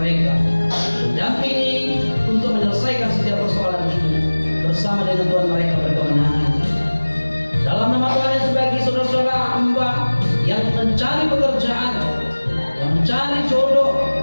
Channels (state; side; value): inverted; both; correlation -1.00